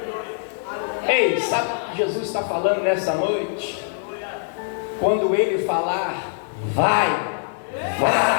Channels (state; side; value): silent; right; digital silence